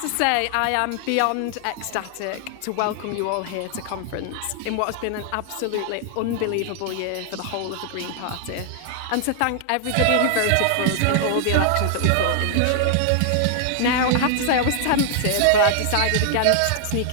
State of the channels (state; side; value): different; both; correlation 0.00